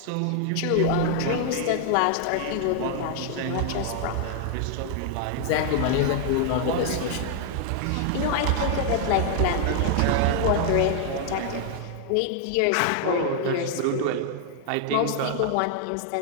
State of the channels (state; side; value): different; both; correlation 0.00